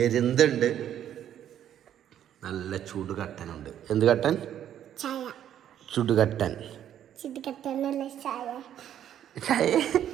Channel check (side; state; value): left; quieter; 10.5 dB